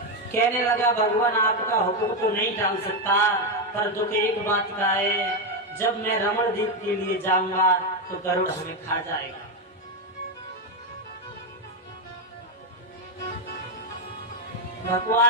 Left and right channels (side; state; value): both; normal; correlation 0.07